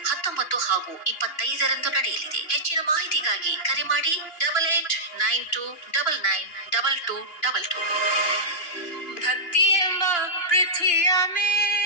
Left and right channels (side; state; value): right; late; 2.9 ms